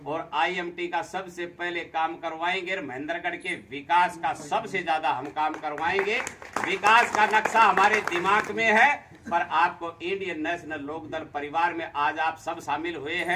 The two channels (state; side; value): identical; both; correlation 1.00